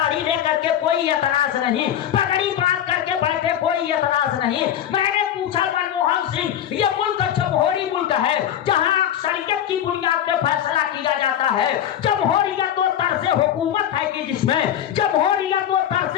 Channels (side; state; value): right; quieter; 10.5 dB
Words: लेकर के कोई एतराज नहीं, पगड़ी बांध करके बैठे, कोई एतराज नहीं। मैंने पूछा मनमोहन सिंह, ये मुल्क जमहूरी मुल्क है जहाँ शरीयत की बुनियाद पे फैसला किया जाता है। जमहूरियत वो तर्ज़ हुकूमत है कि जिसमें जमहूरियत वो तर्ज़